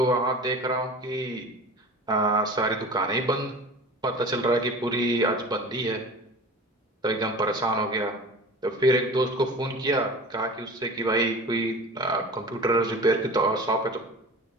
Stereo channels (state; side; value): normal; both; correlation 0.37